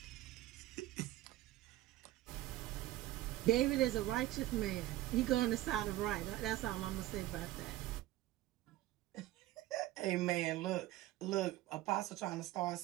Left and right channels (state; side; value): quieter; left; 15.5 dB